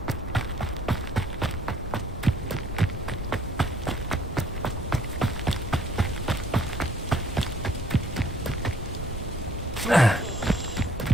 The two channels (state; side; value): normal; both; correlation 0.61